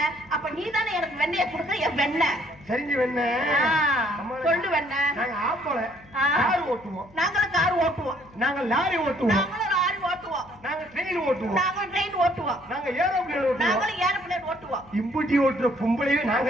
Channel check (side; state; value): left; noise; hum, 25 dB below the sound